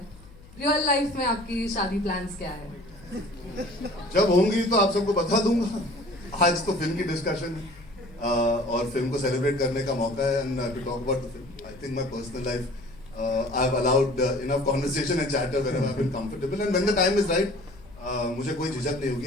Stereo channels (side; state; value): left; noise; hum, 22 dB below the sound